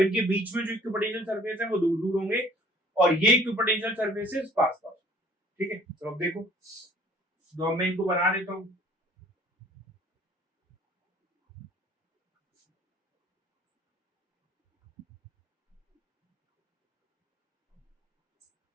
इनके बीच में जो इक्विपोटेंशियल सरफेस है वो दूर दूर होंगे और ये इक्विपोटेंशियल सरफेसेस पास पास। ठीक है, तो अब देखो, तो मैं इनको बना देता हूं।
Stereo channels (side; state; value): both; normal; correlation 0.55